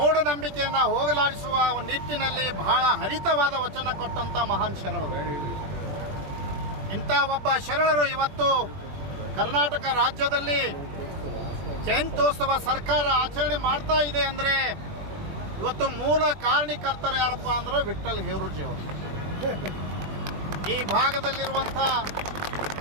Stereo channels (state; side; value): late; left; 20 ms